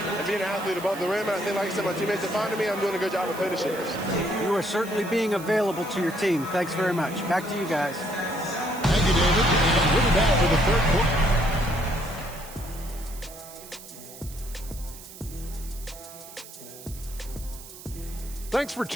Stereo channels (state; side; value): noise; right; hiss, 16 dB below the sound